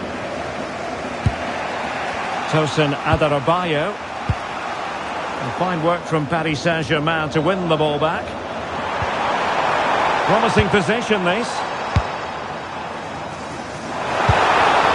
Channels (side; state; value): both; identical; correlation 1.00